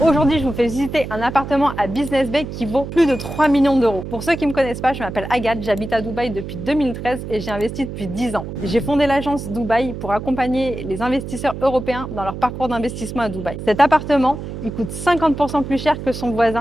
Aujourd'hui, je vous fais visiter un appartement à Business Bay qui vaut plus de 3 millions d'euros. Pour ceux qui ne me connaissent pas, je m'appelle Agathe, j'habite à Dubaï depuis 2013 et j'ai investi depuis 10 ans. J'ai fondé l'agence Dubaï pour accompagner les investisseurs européens dans leur parcours d'investissement à Dubaï. Cet appartement, il coûte 50% plus cher que son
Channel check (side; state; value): right; noise; hum, 8 dB below the sound